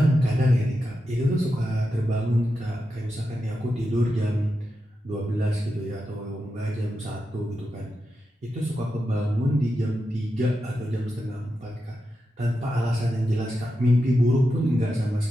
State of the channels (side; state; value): both; normal; correlation 0.88